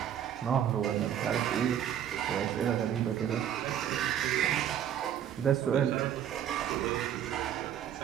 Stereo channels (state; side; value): quieter; left; 9.9 dB